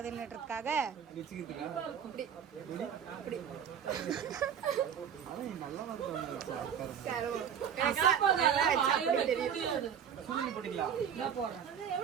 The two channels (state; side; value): quieter; left; 8.2 dB